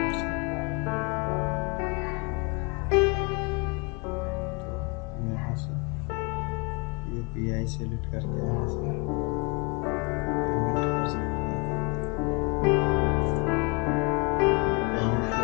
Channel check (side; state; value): right; quieter; 31.0 dB